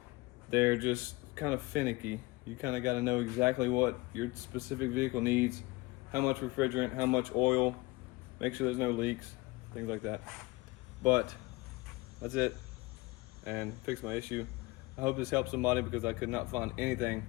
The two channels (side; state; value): right; quieter; 22.8 dB